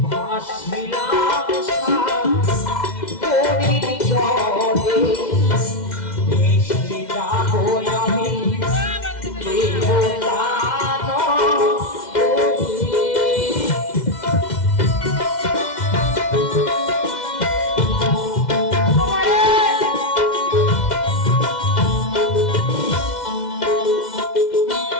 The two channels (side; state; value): right; late; 2.1 ms